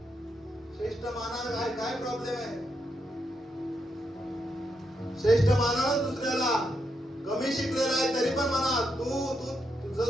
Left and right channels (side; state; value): both; normal; correlation 0.81